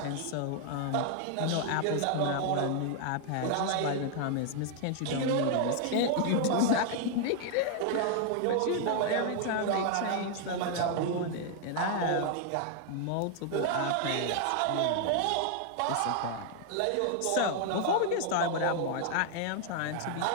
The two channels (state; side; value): different; both; correlation 0.00